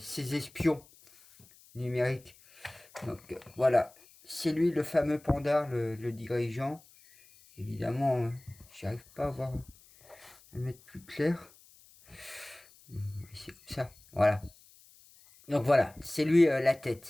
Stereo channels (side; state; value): left; noise; hiss, 26 dB below the sound